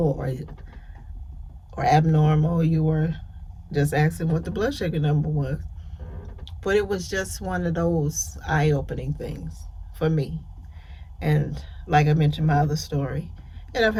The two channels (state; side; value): identical; both; correlation 1.00